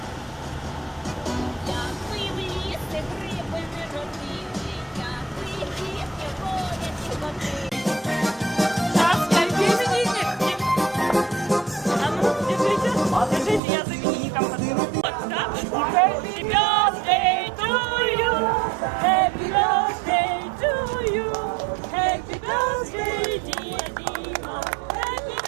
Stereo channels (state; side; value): drops out; left; at 13.6 s